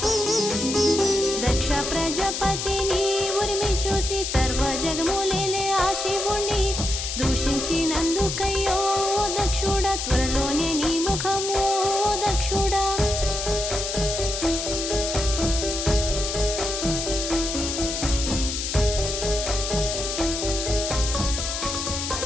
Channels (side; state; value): left; noise; hiss, 3 dB below the sound